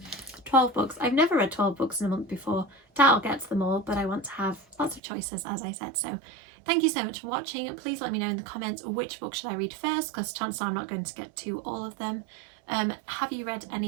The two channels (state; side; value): drops out; left; at 5.0 s